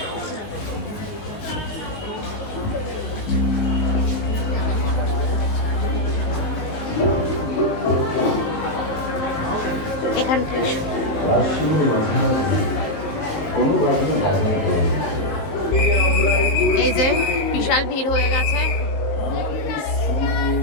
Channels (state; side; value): late; right; 19 ms